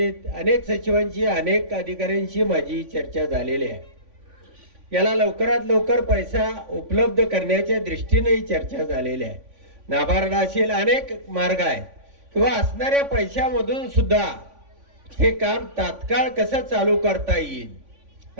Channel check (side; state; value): left; late; 3.5 ms